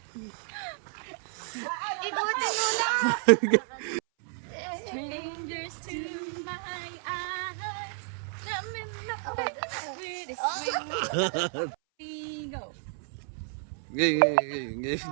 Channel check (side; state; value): left; silent; 57 dB below the other